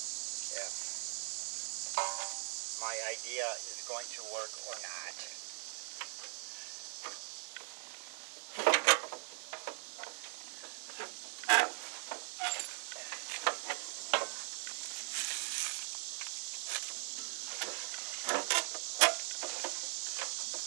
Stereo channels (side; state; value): left; silent; 51 dB below the other